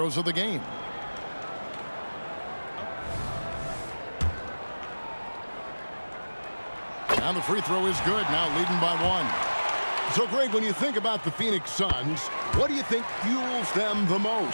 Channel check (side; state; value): both; inverted; correlation -1.00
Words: of the game. And the free throw is good, now leading by 1. So, Greg, when you think about the Phoenix Suns, what do you think fuels them the